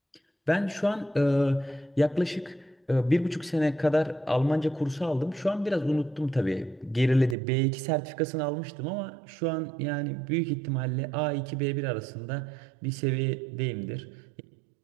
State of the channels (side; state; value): left; drops out; at 7.4 s